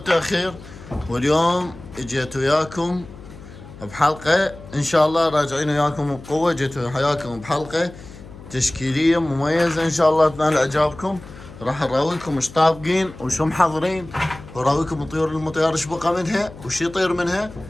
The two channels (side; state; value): left; noise; hum, 17 dB below the sound